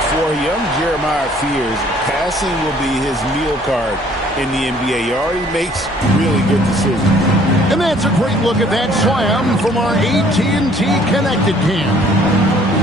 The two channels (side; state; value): both; normal; correlation 0.58